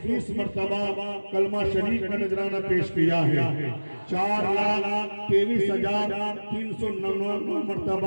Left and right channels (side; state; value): both; inverted; correlation -1.00